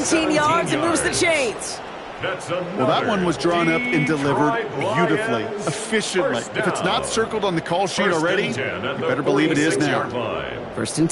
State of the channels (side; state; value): both; identical; correlation 1.00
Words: yards and moves the chains. Well, that one was drawn up and delivered beautifully, efficiently. If it's not circled on the call sheet already, you better believe it is now. First and